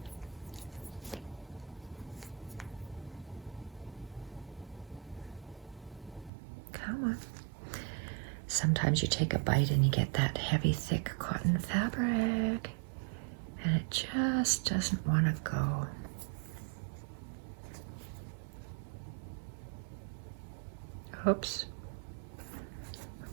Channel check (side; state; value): left; drops out; at 6.3 s